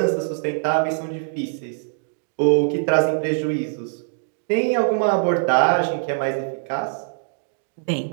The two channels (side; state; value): left; silent; digital silence